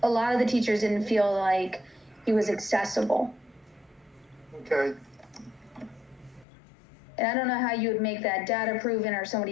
lot of the teachers didn't feel like he was accessible. Okay. And I don't know how you would make that data proven or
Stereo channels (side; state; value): right; drops out; at 6.5 s